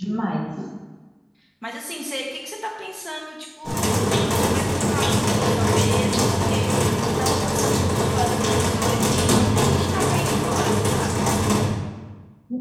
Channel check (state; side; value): identical; both; correlation 1.00